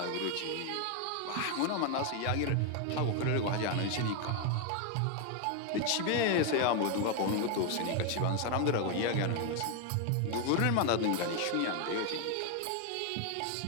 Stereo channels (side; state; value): both; different; correlation 0.01